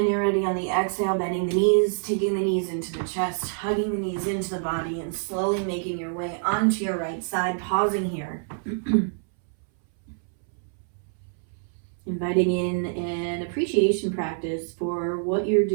you're ready on the exhale, bending the knees, taking the knees into the chest, hugging the knees into the body, and slowly making your way onto your right side, pausing here. Inviting in an appreciation practice for what you're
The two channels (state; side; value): silent; left; 61 dB below the other